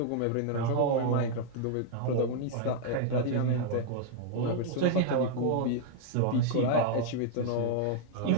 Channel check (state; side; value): different; both; correlation -0.01